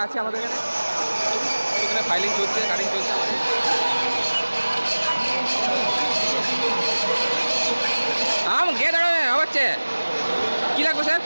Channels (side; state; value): both; inverted; correlation -1.00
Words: আছে আমাদের এখানে ফাইলিং চলছে কাটিং চলছে আমাদের। গেট হচ্ছে কী লাগবে স্যার